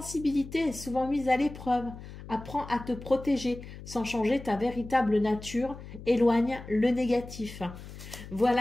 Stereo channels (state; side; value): noise; left; hum, 14 dB below the sound